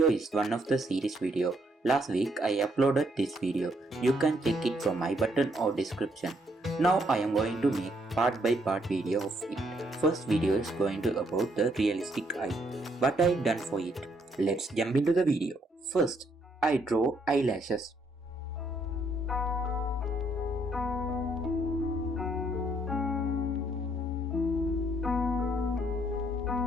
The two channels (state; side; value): normal; both; correlation 0.71